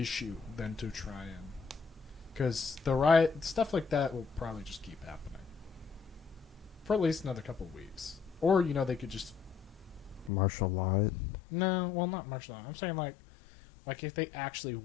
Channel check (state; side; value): drops out; right; at 10.3 s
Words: than to try and. Because the riot, stuff like that will probably just keep happening. For at least another couple of weeks. Or, they could just. martial law it. No, well, not martial law. I'm saying, like if they actually